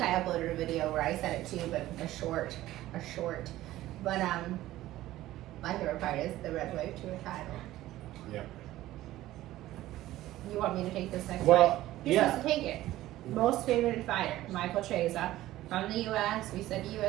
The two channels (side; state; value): left; quieter; 15.4 dB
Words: uploaded a video where I said it too, but a short. But my favorite part is the red wave to a title. Yep. You want me to take this next fight? Well, You're supposed to take it. Most favored fighter, Michael Chiesa from the U.S. We said